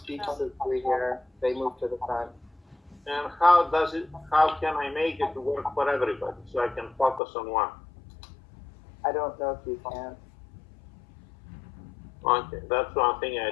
to we here, they move to the front. And how can I make it work for everybody so I can focus on one? I don't know if you can. Okay, that's one thing I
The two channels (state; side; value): drops out; right; at 7.2 s